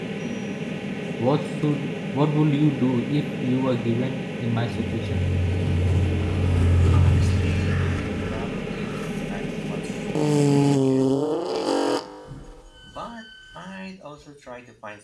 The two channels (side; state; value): both; identical; correlation 1.00